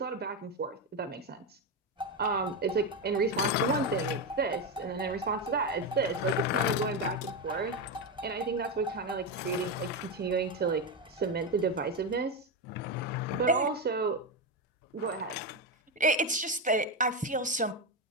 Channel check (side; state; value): both; normal; correlation 0.11